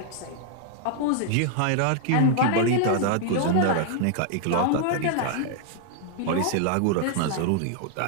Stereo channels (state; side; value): different; both; correlation 0.00